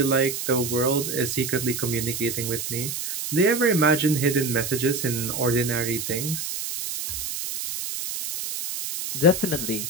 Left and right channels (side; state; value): right; noise; hiss, 5 dB below the sound